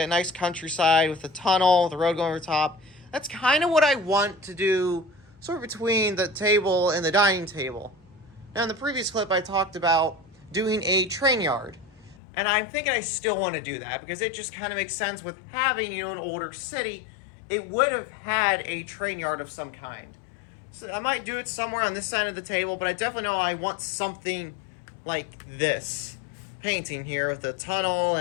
nice countryside with the tunnel, the road going over top. That's kind of what I want to do, sort of between the table and the dining table. Now, in the previous clip, I talked about doing a train yard. And I'm thinking I still want to do that because it just kind of makes sense with having, an older city. It would have had a train yard of some kind. So I might do it somewhere on this side of the table, but I definitely know I want something like this painting here with the tunnel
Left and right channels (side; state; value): right; drops out; at 12.2 s